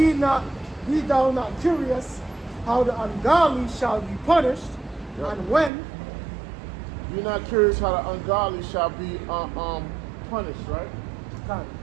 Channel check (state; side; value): drops out; left; at 5.7 s